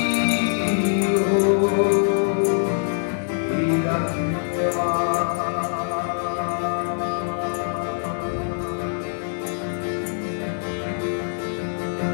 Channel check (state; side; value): silent; right; digital silence